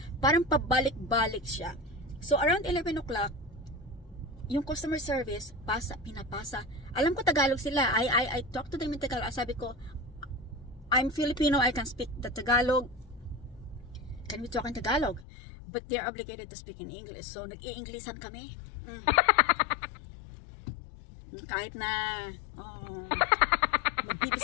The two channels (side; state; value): right; drops out; at 15.2 s